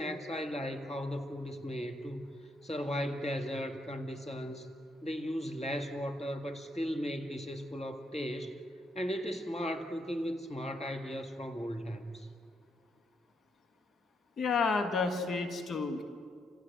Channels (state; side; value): normal; both; correlation 0.78